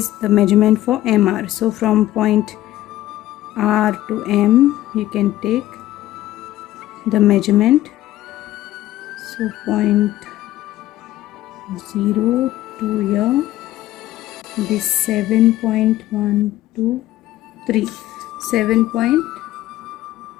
the measurement for MR. So from point R to M you can take the measurement. So point 0 to here be 7.123,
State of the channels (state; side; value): quieter; right; 14.8 dB